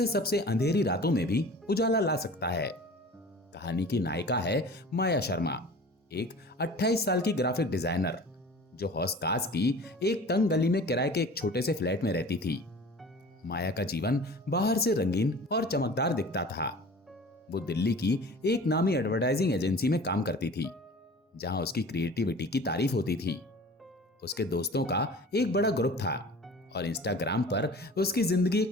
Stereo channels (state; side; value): normal; both; correlation 0.41